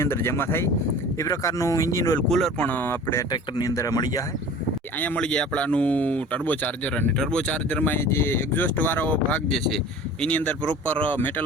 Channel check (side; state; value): both; normal; correlation 0.42